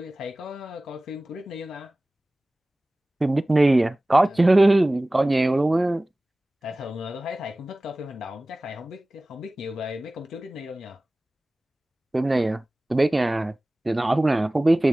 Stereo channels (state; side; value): normal; both; correlation 0.98